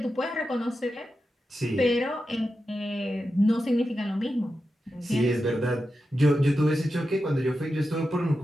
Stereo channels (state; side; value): normal; both; correlation 0.90